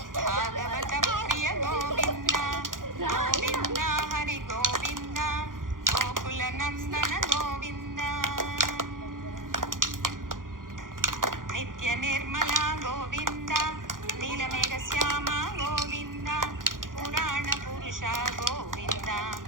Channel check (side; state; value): left; late; 0.90 ms